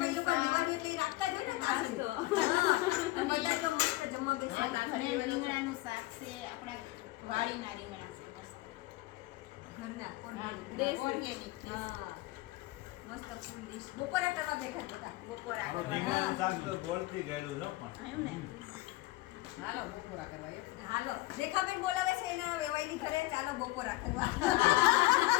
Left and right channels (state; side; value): quieter; right; 19.6 dB